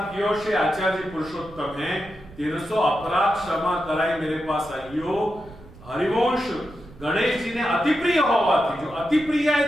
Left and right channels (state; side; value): noise; right; rumble, 20 dB below the sound